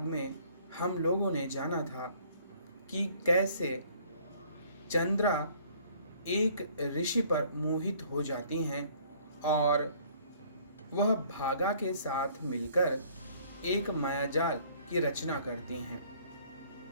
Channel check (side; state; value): both; inverted; correlation -0.58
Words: में हम लोगों ने जाना था कि कैसे चंद्रा एक ऋषि पर मोहित हो जाती हैं और वह भागा के साथ मिलकर एक मायाजाल की रचना करती हैं।